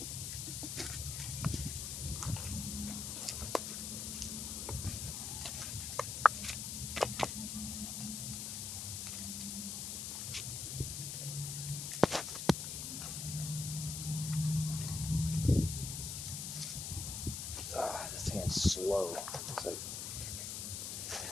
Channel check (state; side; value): noise; left; hiss, 4 dB below the sound